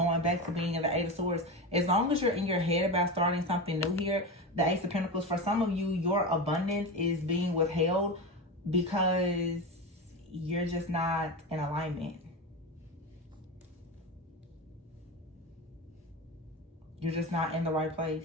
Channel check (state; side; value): normal; both; correlation 0.21